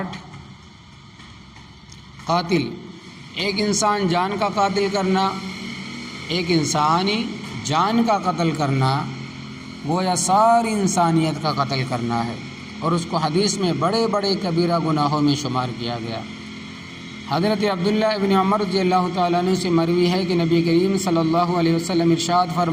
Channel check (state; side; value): identical; both; correlation 1.00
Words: قاتل۔ ایک انسان جان کا قاتل کرنا، ایک انسانی جان کا قتل کرنا گویا ساری انسانیت کا قتل کرنا ہے، اور اس کو حدیث میں بڑے بڑے کبیرہ گناہوں میں شمار کیا گیا۔ حضرت عبداللہ ابن عمر رضی اللہ تعالیٰ عنہ سے مروی ہے کہ نبی کریم صلی اللہ علیہ وسلم ارشاد